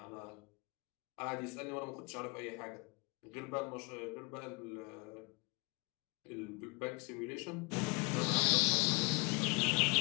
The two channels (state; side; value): quieter; right; 30.3 dB